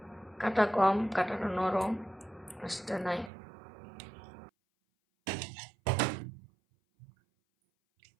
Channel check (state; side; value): drops out; left; at 3.3 s